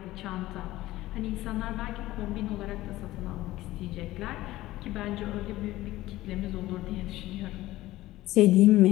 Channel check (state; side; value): quieter; right; 16.7 dB